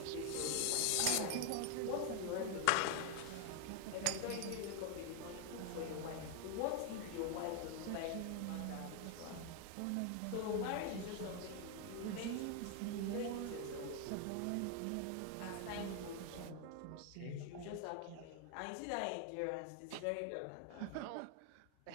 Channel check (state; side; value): different; both; correlation 0.01